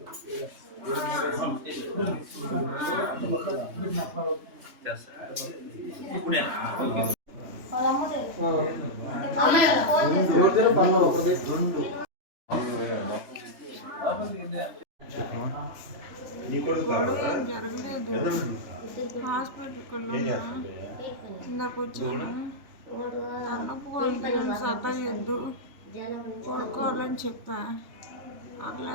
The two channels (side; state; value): left; late; 3.3 ms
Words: జరగలేదు. హాస్పిటల్కి ఇందాక వచ్చాను. తలనొప్పిగా ఉంది, సతాయొద్దు, పడుకోవాలని చెప్పా. ఆ